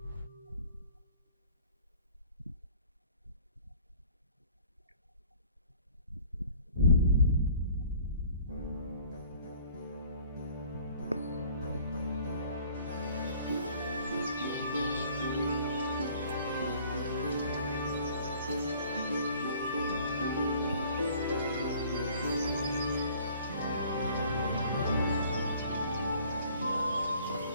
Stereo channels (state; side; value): inverted; both; correlation -0.53